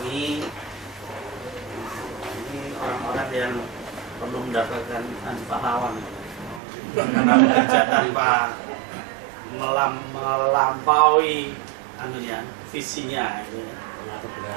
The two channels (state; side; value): drops out; left; at 6.6 s